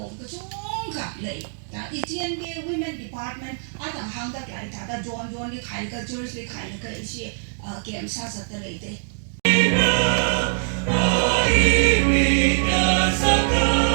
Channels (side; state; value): left; silent; 63 dB below the other